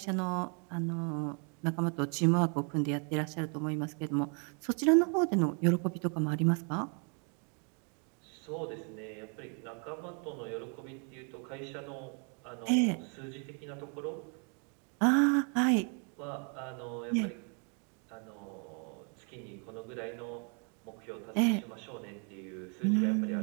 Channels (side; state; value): left; quieter; 38.5 dB